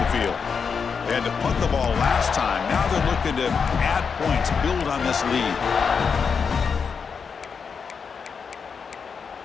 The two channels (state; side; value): quieter; right; 5.9 dB